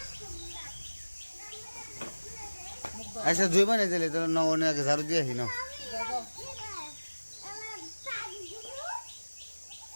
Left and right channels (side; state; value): both; inverted; correlation -1.00